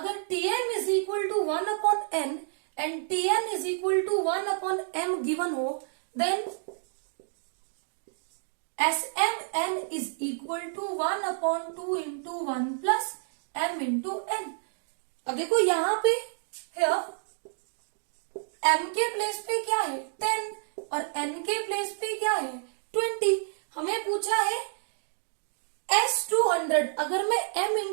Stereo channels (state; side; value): silent; left; digital silence